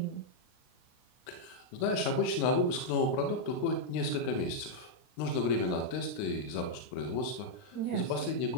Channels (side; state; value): right; late; 39 ms